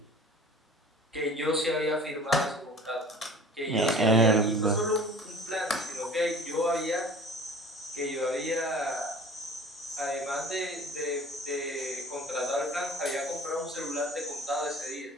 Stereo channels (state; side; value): normal; both; correlation 0.45